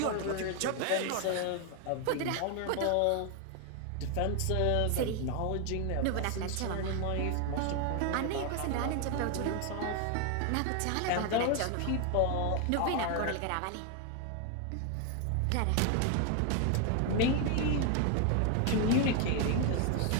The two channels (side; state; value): both; different; correlation 0.01